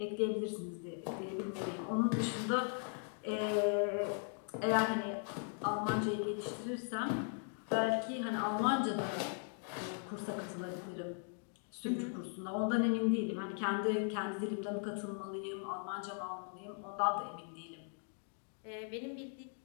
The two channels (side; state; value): right; silent; 52 dB below the other